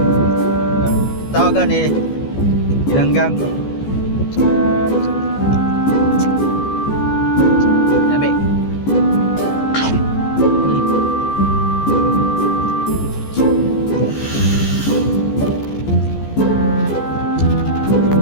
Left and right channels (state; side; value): late; right; 14 ms